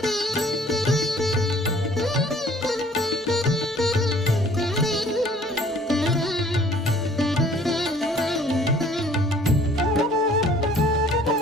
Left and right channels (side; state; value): both; normal; correlation 0.55